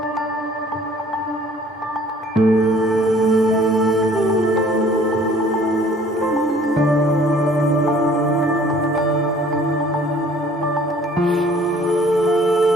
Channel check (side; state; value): both; normal; correlation 0.55